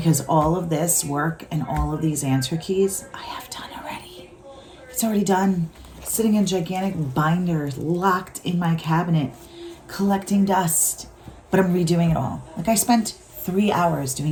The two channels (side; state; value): both; identical; correlation 1.00